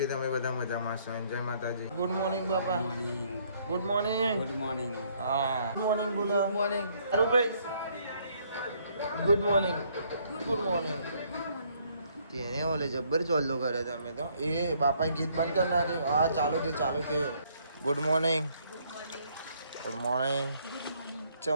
તમે બધા મજામાં છો જય માતાજી ગુડ મોર્નિંગ બાપા ગુડ મોર્નિંગ હા ગુડ મોર્નિંગ બોલો good morning Arubhai good morning તેને ઓલે જબ્બર ચોલ્લો કરે તમે તો એ બાપા ગીત બંધ કર નાખે હા ચાલુ કે ગુડ મોર્નિંગ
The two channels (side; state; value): both; inverted; correlation -0.67